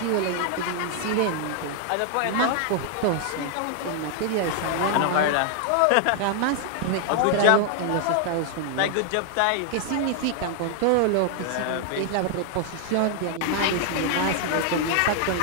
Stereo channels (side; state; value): both; different; correlation 0.00